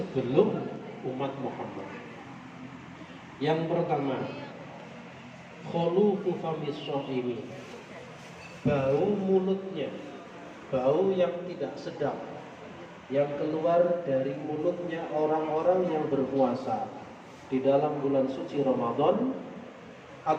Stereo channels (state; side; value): identical; both; correlation 1.00